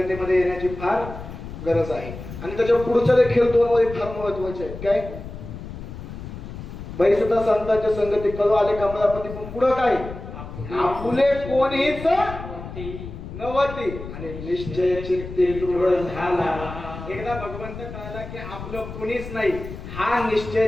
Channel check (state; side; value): noise; left; rumble, 11 dB below the sound